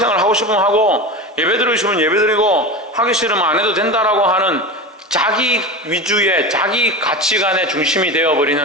하고 싶으면 하고 예배드리고 싶으면 예배드리고 하기 싫으면 안 해도 된다라고 하는 자기 위주의 자기 가치관의 중심이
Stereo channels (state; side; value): normal; both; correlation 0.26